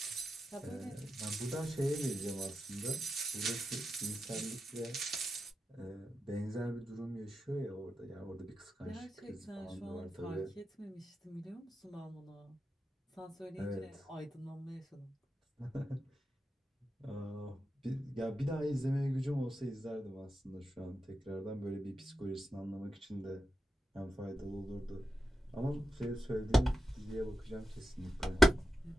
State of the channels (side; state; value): both; normal; correlation 0.88